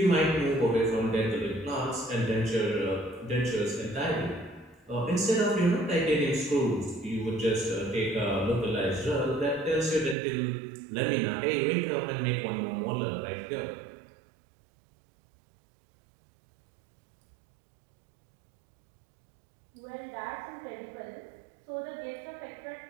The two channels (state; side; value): drops out; left; at 10.2 s